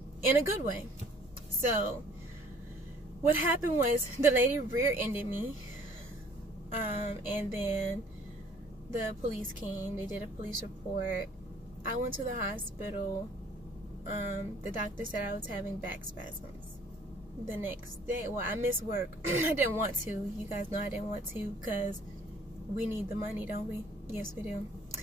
in a good way. So what happened was the lady rear-ended me, and then the police came. They did a police report. I went to the hospital. The doctor said I was having back spasms. The next day, well, I missed work. I didn't want to. You guys know I didn't want to because we need the money, don't we? Yes, we do.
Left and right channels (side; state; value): both; normal; correlation 0.57